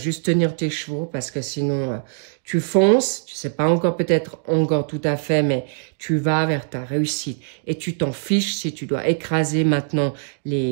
tenir tes chevaux parce que sinon tu fonces, tu sais pas encore peut-être encore tout à fait, mais tu vas vers ta réussite. Et tu t'en fiches si tu dois écraser maintenant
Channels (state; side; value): silent; left; digital silence